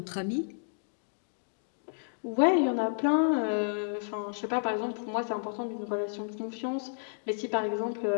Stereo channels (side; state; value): right; silent; digital silence